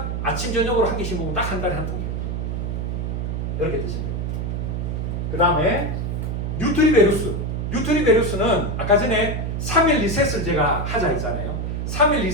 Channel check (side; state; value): right; noise; hum, 2 dB below the sound